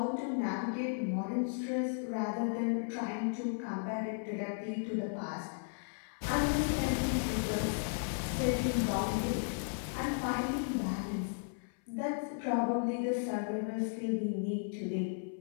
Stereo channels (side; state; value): right; silent; 54 dB below the other